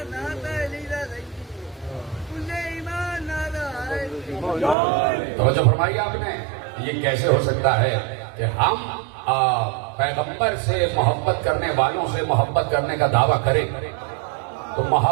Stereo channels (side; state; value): left; drops out; at 4.8 s